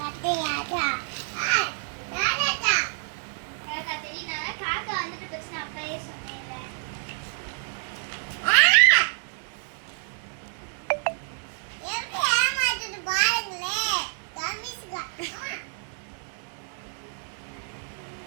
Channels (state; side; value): silent; left; 59 dB below the other